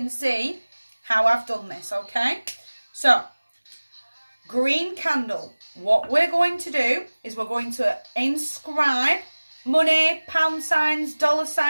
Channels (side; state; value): both; inverted; correlation -1.00